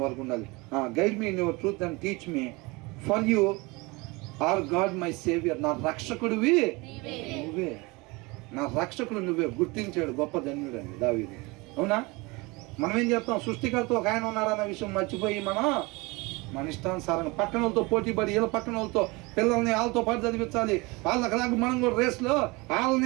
వరకు ఉండాలి. Guide me in your truth and teach me, for you are God my saviour. నా రక్షకుడివి నువ్వే, నా రక్షకుడు నువ్వే గుర్తించాడు గొప్ప ధన్యుడు అండి దావీదు. అవునా? మనం ఏం చేస్తాం? సృష్టికర్త ఒక ఆయన ఉన్నారన్న విషయం మర్చిపోయి మన ఇష్టానుసారంగా పక్కన వాళ్ళతో పోటీ పడి, వీళ్ళ పక్కన వాళ్ళతో పిల్లల్ని వాళ్ళతో పాటు చదివించాలి, వాళ్ళకి మనం కూడా రేస్లో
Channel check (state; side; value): quieter; left; 25.0 dB